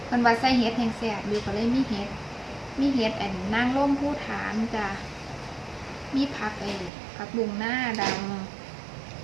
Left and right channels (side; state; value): left; drops out; at 6.9 s